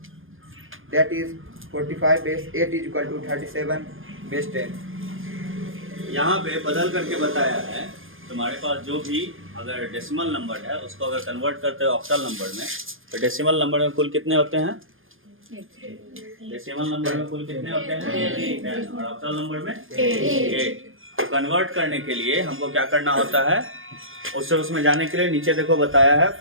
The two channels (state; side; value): late; left; 0.59 ms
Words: That is 45 base 8 is equal to 37 base 10. यहाँ पे बदल करके बताया है तुम्हारे पास जो भी अगर डेसिमल नंबर है उसको अगर कन्वर्ट करते हो ऑक्टल नंबर में तो डेसिमल नंबर में कुल कितने होते हैं? डेसिमल नंबर में कुल कितने होते हैं? 10 और ऑक्टल नंबर में 8। कन्वर्ट करने के लिए हमको क्या करना होता है? उसमें जाने के लिए नीचे देखो बताया है